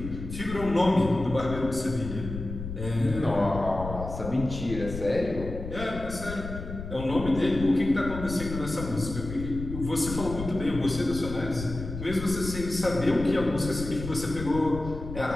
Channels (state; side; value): noise; left; rumble, 8 dB below the sound